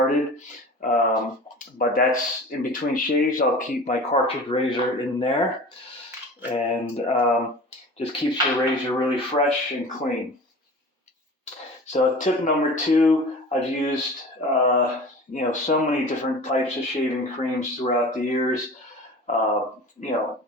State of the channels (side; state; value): both; normal; correlation 0.38